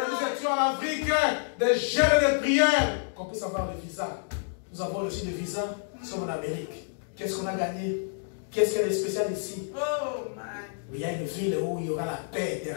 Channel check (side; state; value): right; silent; digital silence